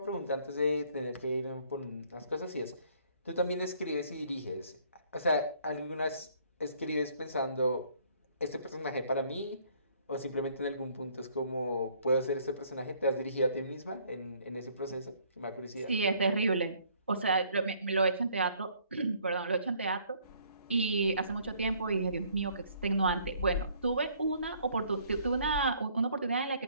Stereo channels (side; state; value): both; inverted; correlation -0.62